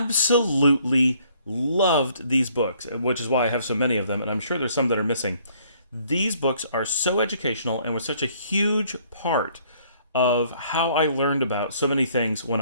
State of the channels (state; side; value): inverted; both; correlation -0.62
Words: loved these books, which is why I have so many of them. And I'm sure there's some that are missing. These books are so educational and were such a huge part of how I learned about so many things when